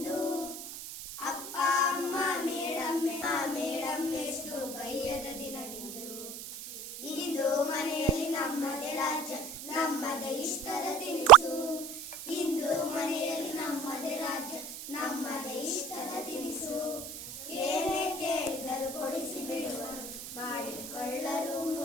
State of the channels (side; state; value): right; noise; hiss, 11 dB below the sound